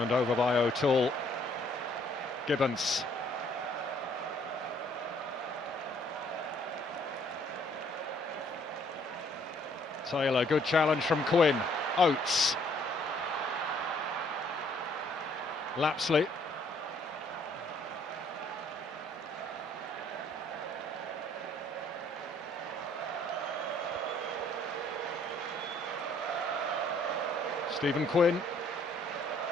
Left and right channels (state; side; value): normal; both; correlation 0.63